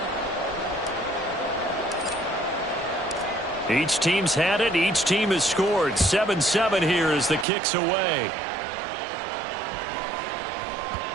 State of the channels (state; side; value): drops out; left; at 7.5 s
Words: Each team's had it. Each team has scored. 7-7 here as the kick's away.